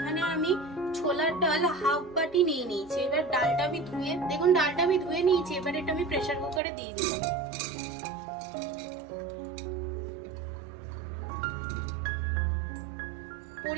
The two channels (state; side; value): drops out; left; at 6.6 s